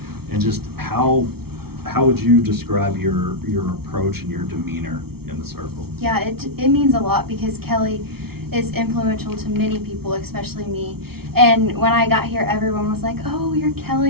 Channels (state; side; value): late; left; 0.95 ms